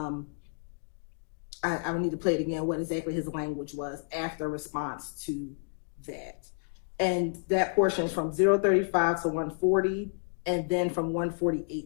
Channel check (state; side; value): silent; right; digital silence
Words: would need to play it again, what exactly his language was after response to that. And that portion is from 035 to 140, and then from